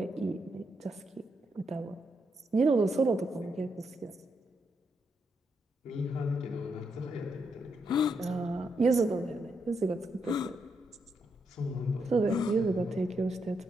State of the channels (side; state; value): both; normal; correlation 0.80